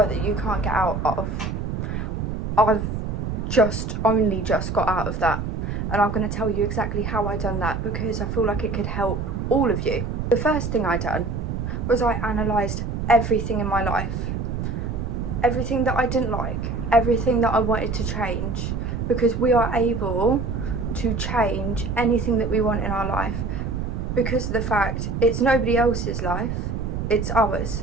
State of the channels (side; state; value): right; noise; rumble, 3 dB below the sound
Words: that you can't get out of, I've only just got out of that, and I'm going to tell you exactly how I done that because I feel like it could help all of you. The first thing I done was I analysed everything in my life, everything that I didn't like, everything that I wanted to change, because we are able to change anything that we want in our life because of the fact it's nobody else's life, it's ours.